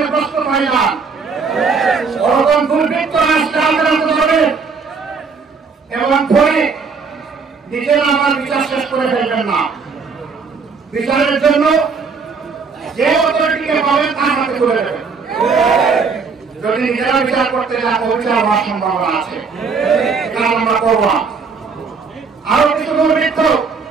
প্রস্তুত হয়ে যান। ওরকম দুর্বৃত্ত রাষ্ট্রে আক্রান্ত হবে এবং পরে নিজেরা আমার বিচার শেষ করে ফেলবেন না। বিচারের জন্য যে অথরিটিকে পাবেন তার হাতে তুলে দেবেন। যদি নিজেরা বিচার করতে যান, অবিচার হওয়ার সম্ভাবনা আছে, কাজ আমরা করব না। আরো কিছু দুর্বৃত্ত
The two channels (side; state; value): left; quieter; 5.1 dB